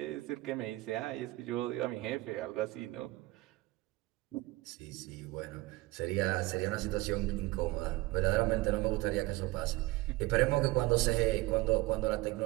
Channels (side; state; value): left; quieter; 20.3 dB